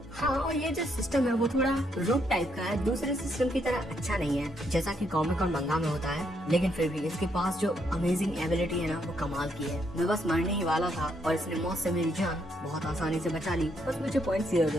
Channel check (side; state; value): both; normal; correlation 0.75